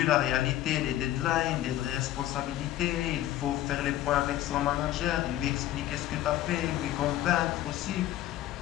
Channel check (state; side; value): quieter; right; 13.8 dB